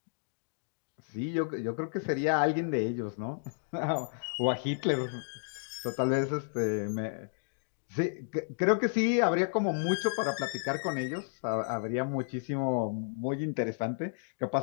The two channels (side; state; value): right; silent; digital silence